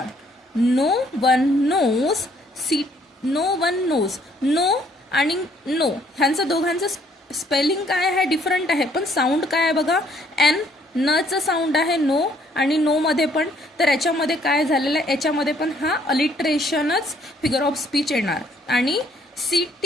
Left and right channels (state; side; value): normal; both; correlation 0.64